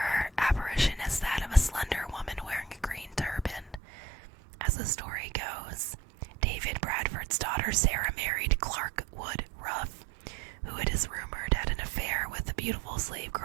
apparition as that of a slender woman wearing a green turban. As the story goes, David Bradford's daughter Sarah married Clark Wood Ruff, who it is rumored had an affair with a beautiful slave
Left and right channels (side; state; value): left; drops out; at 3.8 s